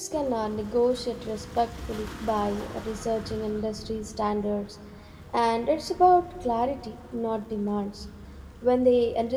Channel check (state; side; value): identical; both; correlation 1.00